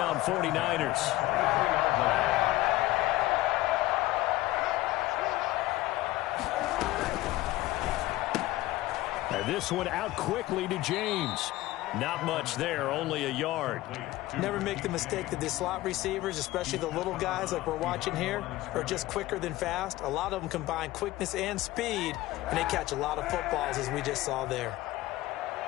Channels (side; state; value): right; quieter; 17.3 dB